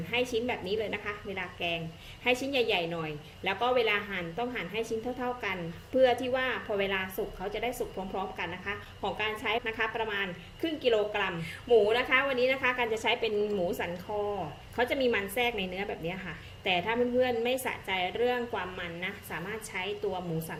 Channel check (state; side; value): identical; both; correlation 1.00